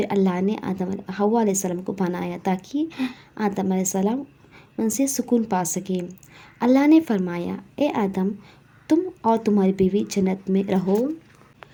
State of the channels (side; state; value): both; identical; correlation 1.00